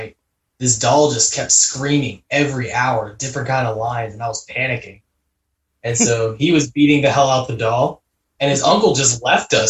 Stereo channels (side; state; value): both; identical; correlation 1.00